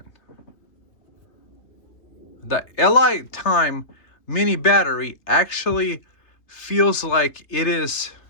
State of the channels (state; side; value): late; right; 3.3 ms